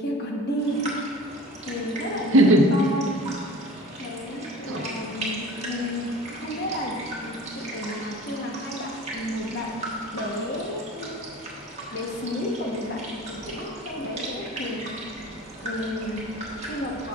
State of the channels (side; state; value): both; normal; correlation 0.42